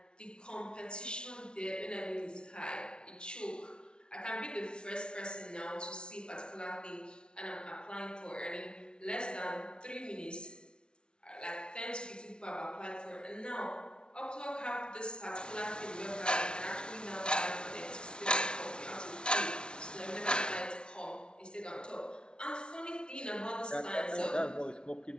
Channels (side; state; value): right; late; 0.056 ms